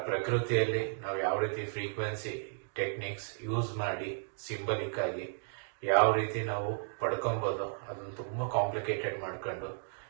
ಪ್ರಕೃತಿಯಲ್ಲಿ ನಾವು ಯಾವ ರೀತಿ ಫ್ರೀಕ್ವೆನ್ಸಿ ಟೆಕ್ನಿಕ್ಸ್ ಯೂಸ್ ಮಾಡಿ ಸಿಂಬಲಿಕ್ ಆಗಿ ಯಾವ ರೀತಿ ನಾವು ಪಡ್ಕೊಬಹುದು ಅದನ್ನು ತುಂಬಾ ಕಾಂಪ್ಲಿಕೇಟೆಡ್ ಮಾಡ್ಕೊಂಡು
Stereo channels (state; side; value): silent; left; digital silence